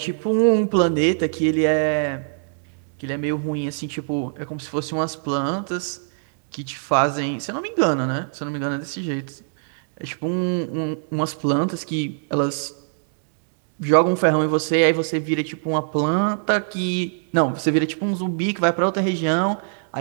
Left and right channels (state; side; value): silent; left; digital silence